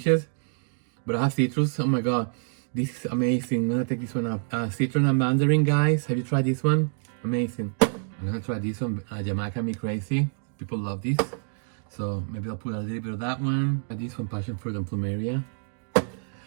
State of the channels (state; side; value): silent; left; digital silence